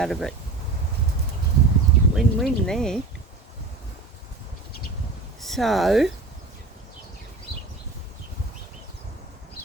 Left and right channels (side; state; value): left; quieter; 3.6 dB